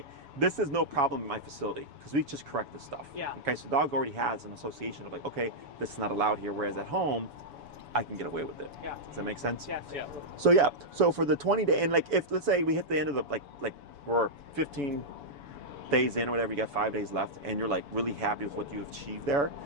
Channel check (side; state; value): left; late; 7.0 ms